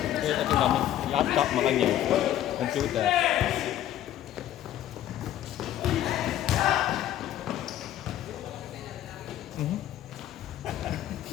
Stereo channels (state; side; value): quieter; right; 12.2 dB